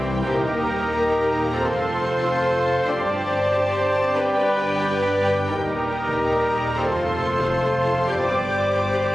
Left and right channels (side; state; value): both; normal; correlation 0.95